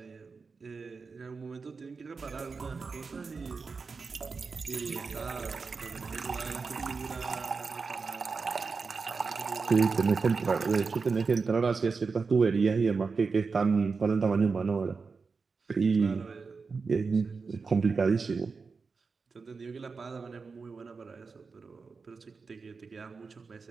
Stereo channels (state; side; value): quieter; left; 4.7 dB